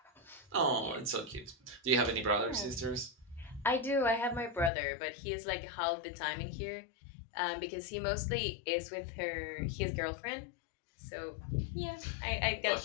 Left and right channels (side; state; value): right; drops out; at 4.7 s